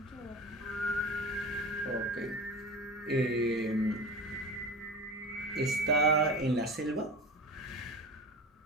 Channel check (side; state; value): both; normal; correlation 0.32